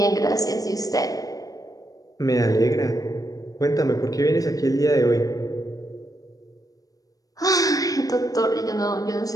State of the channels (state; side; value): late; right; 0.17 ms